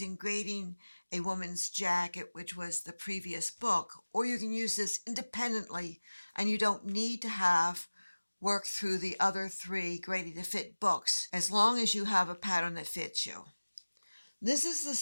Grading a Woman's Jacket, which was the previous book, or you can use this independently and you don't need to have worked through the other 3 Graded to Fit books, as long as you have a pattern that fits you. This is the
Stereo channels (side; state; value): both; inverted; correlation -1.00